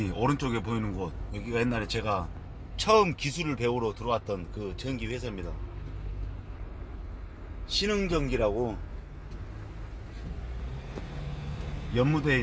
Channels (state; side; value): identical; both; correlation 1.00